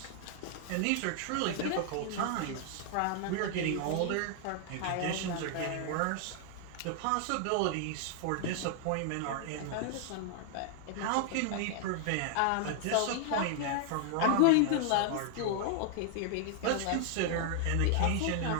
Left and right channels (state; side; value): different; both; correlation 0.00